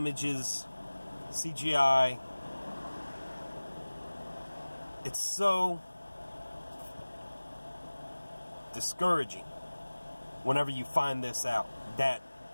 CGI. It's so discouraging whenever you find this out, that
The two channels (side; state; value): both; inverted; correlation -1.00